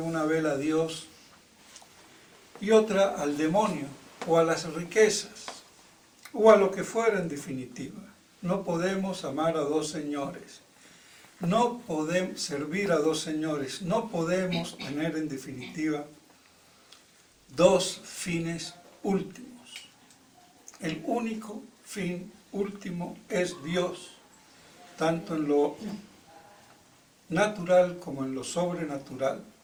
vela a Dios y otra al demonio o a las riquezas o a lo que fuera en definitiva. No podemos amar a dos señores, no podemos servir a dos señores, no podemos tener en definitiva dos fines últimos. El único fin último es Dios, tanto en lo natural como en lo sobrenatural.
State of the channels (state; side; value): identical; both; correlation 1.00